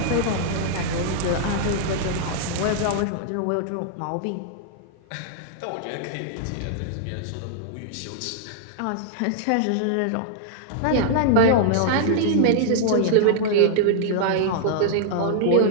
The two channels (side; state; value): both; different; correlation -0.01